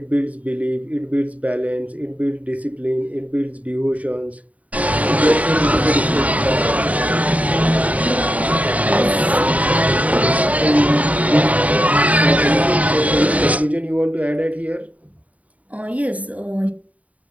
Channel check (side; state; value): left; late; 0.070 ms